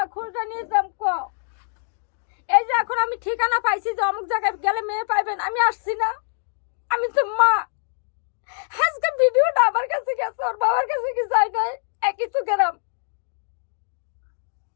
খোঁজটা নিতাম ক এই যে এখন আমি ঠিকানা পাইছি যে অমুক জায়গায় গেলে মেয়ে পাইবেন আমি আসছি না আমি তো মা আজকে ভিডিওটা আমার কাছে গেছে ওর বাবার কাছে কি যায় নাই একই তো গেলাম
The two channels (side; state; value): right; silent; digital silence